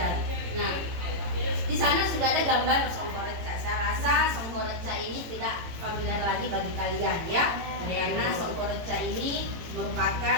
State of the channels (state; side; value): late; left; 18 ms